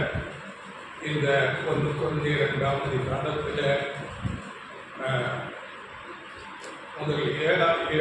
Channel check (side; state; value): both; identical; correlation 1.00